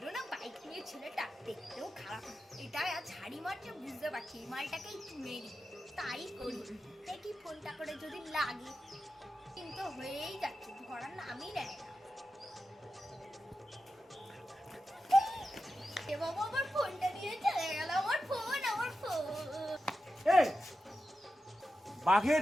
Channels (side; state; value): both; normal; correlation 0.90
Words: না বাইক নিয়ে ছেলেটা, দেখতেও খারাপ। এটা আজ হাড়ি মারছে বুঝতে পারছি, এই মালটাকেই চুনে দিই। তাই করি, দেখি ফোনটা করে যদি লাগে। কিন্তু হয়েই যাচ্ছে, ধরার নামই নেয় না। এ বাবা, আমার ফোনটা নিয়ে চলে গেল। আমার ফোন, আমার ফোন। এই বাঘের